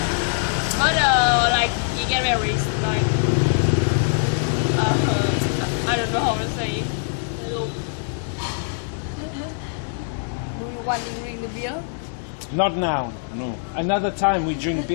But like he get married like I don't know how to say. do you want to drink the beer Not now, no. Another time we drink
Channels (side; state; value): right; silent; digital silence